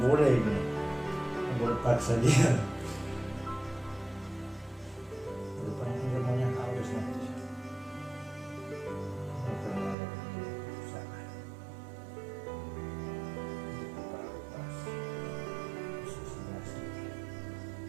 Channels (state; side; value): drops out; left; at 10.0 s